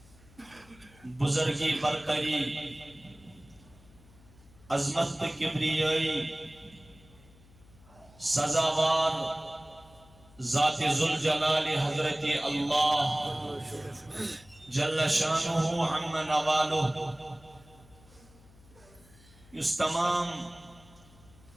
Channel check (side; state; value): left; noise; hum, 25 dB below the sound